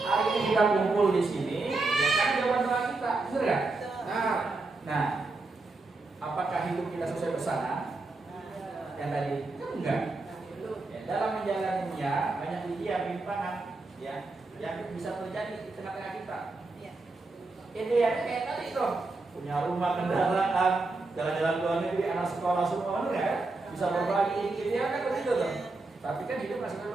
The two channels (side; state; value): left; quieter; 3.4 dB